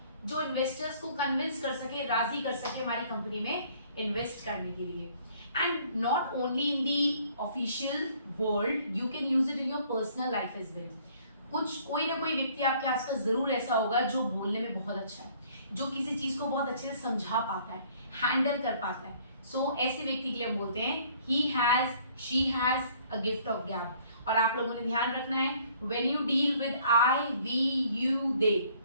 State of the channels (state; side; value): inverted; both; correlation -0.59